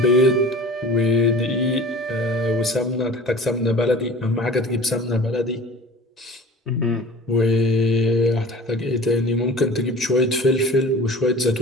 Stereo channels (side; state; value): both; normal; correlation 0.41